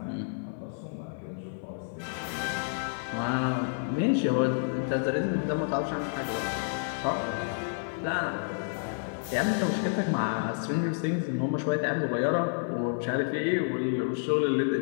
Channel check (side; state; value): right; silent; 55 dB below the other